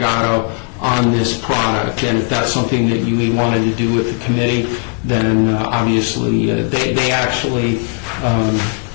on this product, and if that's something that you wanted to do with the committee, then obviously they actually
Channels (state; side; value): quieter; right; 37.1 dB